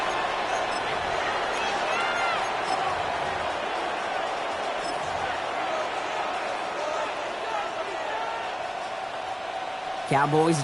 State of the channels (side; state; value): both; identical; correlation 1.00